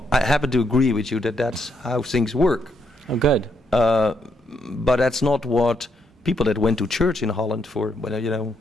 I happen to agree with you that that's how things work. Oh, good. But that's not what people that went to church in Holland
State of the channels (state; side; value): normal; both; correlation 0.77